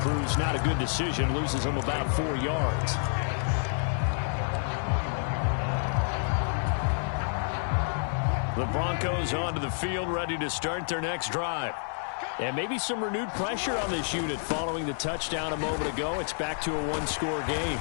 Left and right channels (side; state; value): right; silent; 59 dB below the other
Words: not a good decision. Loses him about 4 yards. The Broncos onto the field, ready to start their next drive. And maybe some renewed pressure on this unit following the touchdown a moment ago. It's back to a 1-score game.